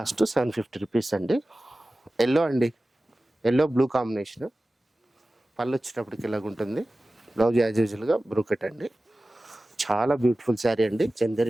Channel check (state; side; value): normal; both; correlation 0.96